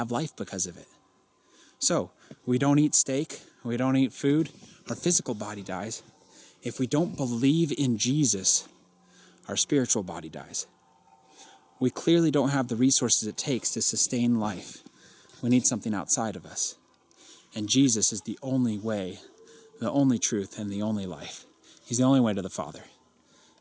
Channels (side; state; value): both; identical; correlation 1.00